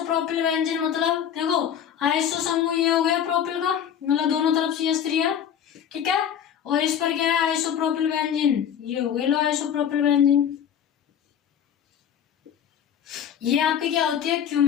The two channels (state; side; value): quieter; right; 8.9 dB